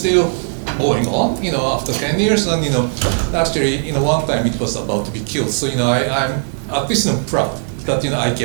going on, after 10 years, and actually, one time it was about to be killed. So I'm at least proud that I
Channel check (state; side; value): silent; left; 64 dB below the other